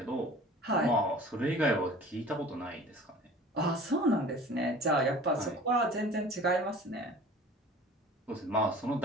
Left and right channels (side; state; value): both; normal; correlation 0.44